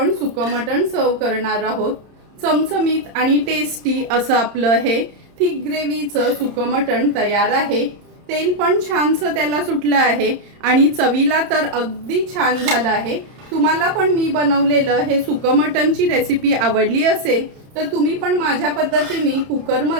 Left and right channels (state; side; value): late; left; 30 ms